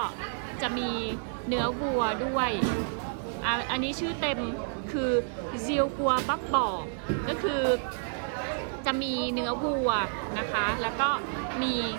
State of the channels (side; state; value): left; silent; digital silence